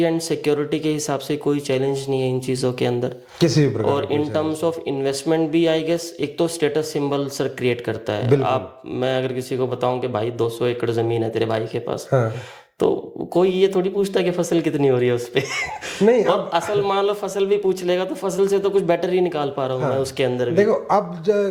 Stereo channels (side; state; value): both; identical; correlation 1.00